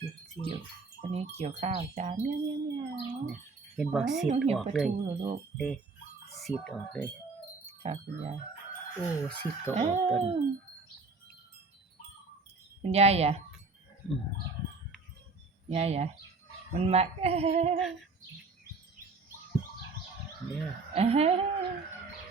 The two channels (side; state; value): left; quieter; 4.0 dB